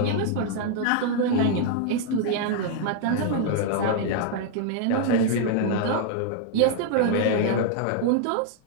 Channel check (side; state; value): both; different; correlation 0.00